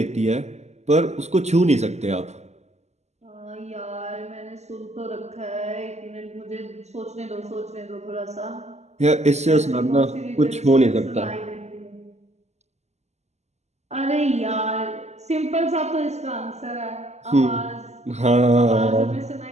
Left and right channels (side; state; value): left; late; 0.33 ms